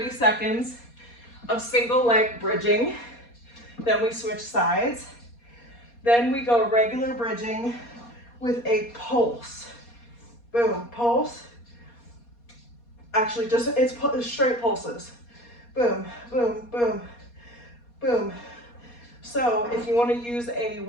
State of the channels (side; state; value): right; late; 4.2 ms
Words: seconds of single leg bridging. Then we switch sides. Then we go regular bridging with a pulse. Boom, pulse. Actually, it's straight pulses. Boom, boom, boom, boom. So if you want to use a